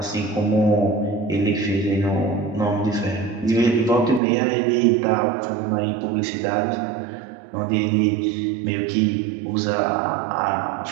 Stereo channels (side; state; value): left; drops out; at 4.2 s